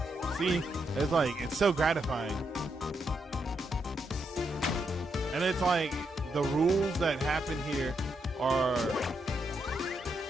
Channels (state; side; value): normal; both; correlation 0.80